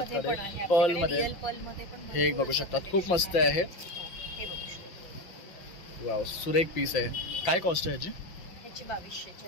कडे पर्ल मध्ये हे एक बघू शकतात. खूप मस्त आहे. वाव, सुरेख पीस आहे. काय कॉस्ट आहे ह्याची? ह्याची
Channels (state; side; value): late; right; 5.8 ms